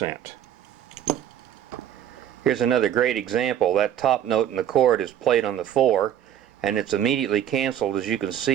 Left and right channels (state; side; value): quieter; left; 10.3 dB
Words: Here's another great example. That top note in the chord is played on the 4, and it's immediately canceled, as you can